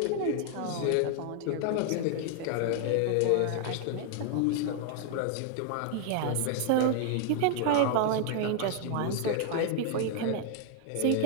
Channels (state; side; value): different; both; correlation -0.01